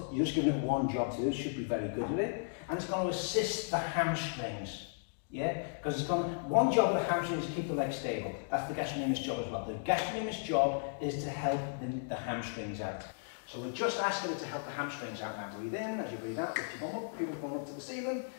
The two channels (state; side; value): silent; right; digital silence